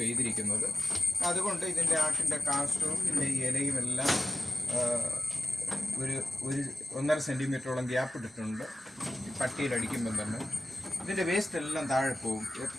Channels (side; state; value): both; normal; correlation 0.95